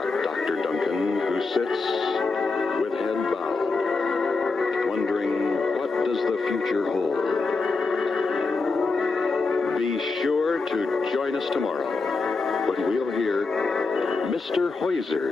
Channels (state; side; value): quieter; right; 3.9 dB